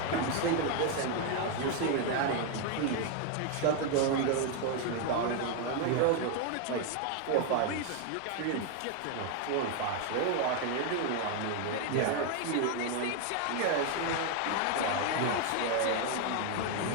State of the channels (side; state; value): both; different; correlation 0.01